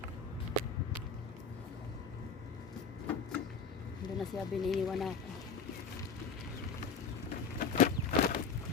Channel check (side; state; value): right; quieter; 5.2 dB